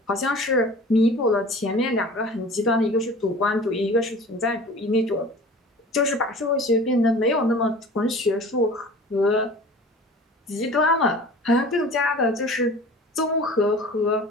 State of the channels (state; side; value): normal; both; correlation 0.42